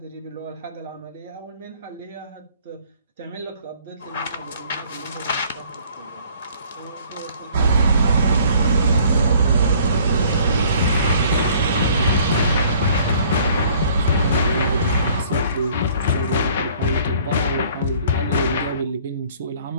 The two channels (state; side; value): inverted; both; correlation -0.56